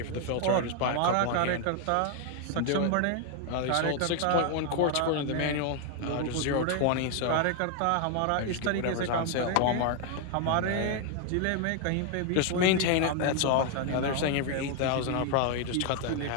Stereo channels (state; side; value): different; both; correlation 0.00